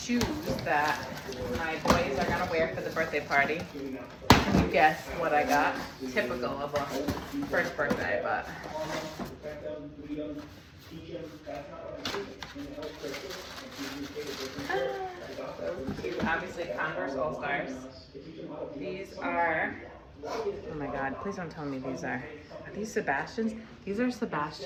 that my boys are gonna wear for the birthday party. You guess what I got? Typical of a first birthday, but obviously Converse All-Stars. These are, oh my God, please don't tell me these are these Sebastians? These are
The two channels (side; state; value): both; identical; correlation 1.00